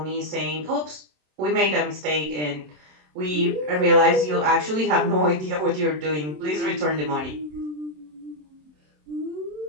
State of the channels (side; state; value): left; late; 27 ms